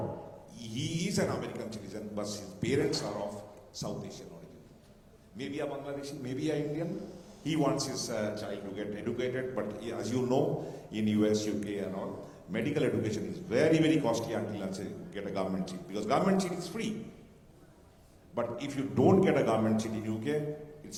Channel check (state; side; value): identical; both; correlation 1.00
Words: he is an American citizen, but his parents are of South Asian origin. Maybe a Bangladeshi, maybe an Indian. He wants his child to get educated, but as you know, in US, UK and all, medical education is very, very costly until you get a government seat, because government seat is free. But if you don't get a government seat in UK,